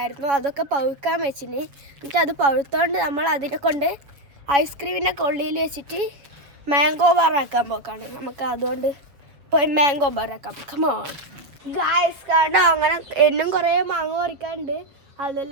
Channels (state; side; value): late; left; 7.3 ms